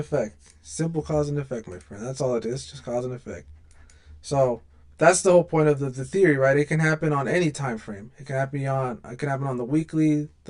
Simple cause and effect, my friend. That's all it is. Just cause and effect. So that's the whole point of the theory, right? It can happen on any time frame. It can happen on the weekly,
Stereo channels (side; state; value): both; identical; correlation 1.00